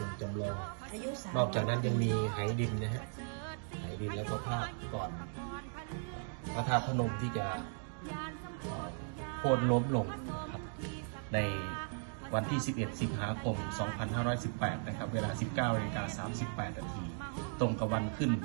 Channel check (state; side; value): silent; left; 53 dB below the other